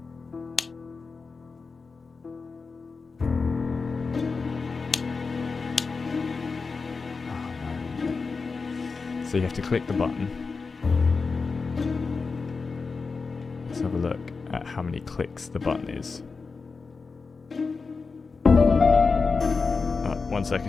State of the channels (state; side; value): quieter; right; 4.6 dB